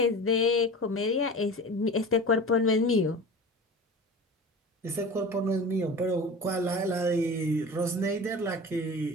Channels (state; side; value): normal; both; correlation 0.35